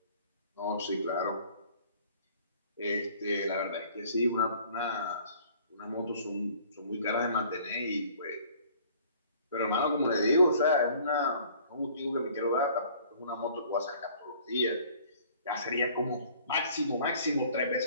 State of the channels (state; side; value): inverted; both; correlation -0.53